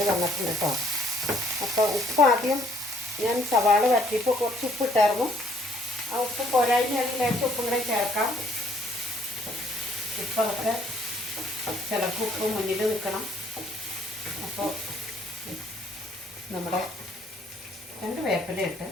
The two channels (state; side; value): normal; both; correlation 0.64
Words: വന്നിട്ടുണ്ട് കേട്ടോ. അപ്പോൾ ഉപ്പ് ആദ്യം ഞാൻ സവാള വരട്ടിയപ്പോൾ കുറച്ച് ഉപ്പ് ഇട്ടായിരുന്നു. ആ ഉപ്പ് പോരായ്മയാണെങ്കിൽ ലേശം ഉപ്പും കൂടെ ചേർക്കാം. ഉപ്പൊക്കെ ചിലർക്ക് ഉപ്പ് മുന്നിൽ നിൽക്കണം. അപ്പോൾ നമ്മുടെ 2 വേപ്പില ഇട്ട്